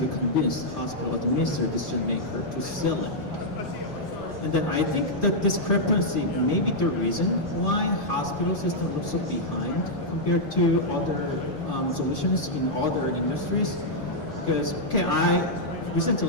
convince the hospital administrator decision maker to sell it. And then I think that discrepancy may be the reason why hospital system looks so behind compared to other solutions in other industries. Because,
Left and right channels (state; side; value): normal; both; correlation -0.06